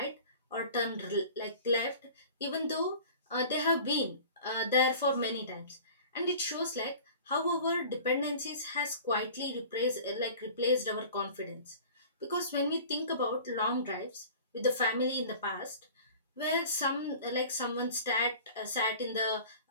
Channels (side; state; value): both; inverted; correlation -0.42